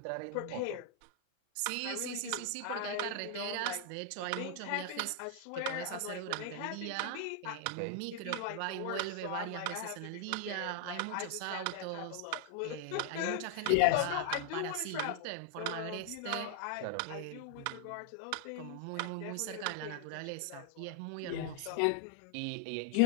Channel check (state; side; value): different; both; correlation 0.00